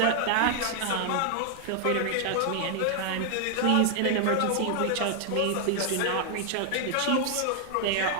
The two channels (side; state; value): both; different; correlation 0.00